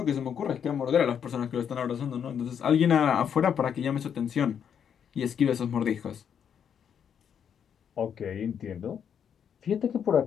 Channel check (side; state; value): right; quieter; 8.1 dB